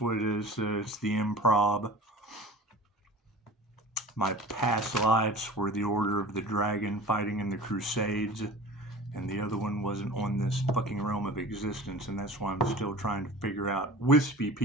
what it is. It's the improv. My past lives were the Order of the Dragon fighting in the Crusades. And the other one wasn't on this fucking realm of existence, and that's why I'm still trying to figure out wispy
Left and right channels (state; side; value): normal; both; correlation 0.39